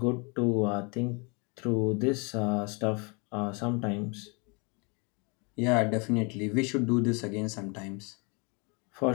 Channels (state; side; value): quieter; right; 31.9 dB